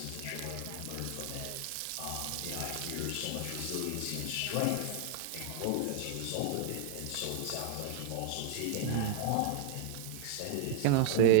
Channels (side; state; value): both; different; correlation 0.00